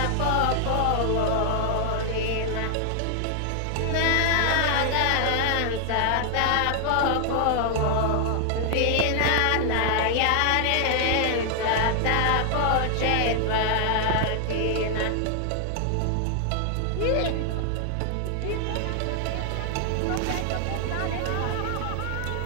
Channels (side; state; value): both; different; correlation 0.00